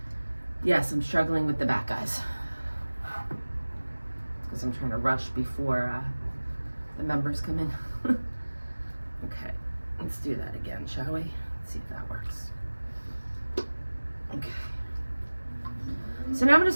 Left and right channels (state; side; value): inverted; both; correlation -1.00